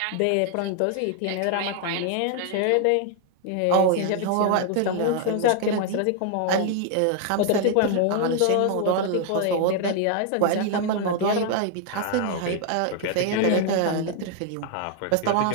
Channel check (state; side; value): different; both; correlation 0.00